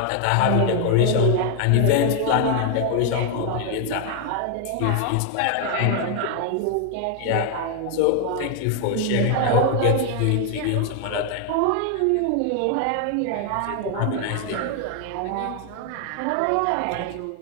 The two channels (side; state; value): both; different; correlation 0.00